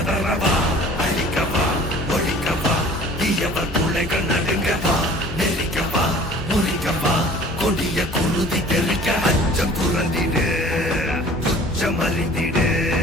அழிக்கவா ஒழிக்கவா தீயவர் துளைகள் நடுங்கவா நெருக்கவா முறிக்கவா கொடிய குருதி தெறிக்க அச்சம் புரந்திடு உச்சம் அறிந்திடு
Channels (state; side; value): normal; both; correlation 0.48